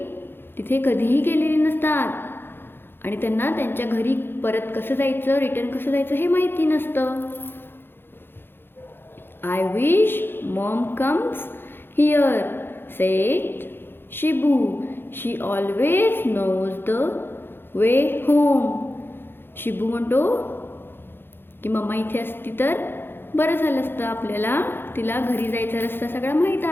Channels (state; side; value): late; right; 0.10 ms